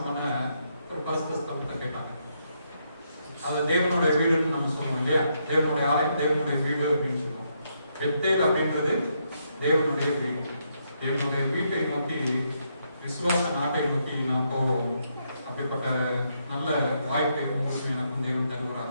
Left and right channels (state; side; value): inverted; both; correlation -0.77